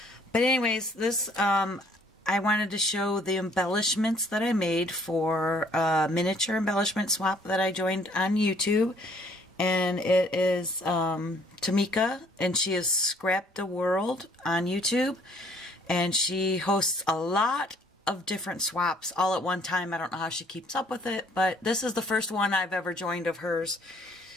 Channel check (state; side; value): normal; both; correlation 0.61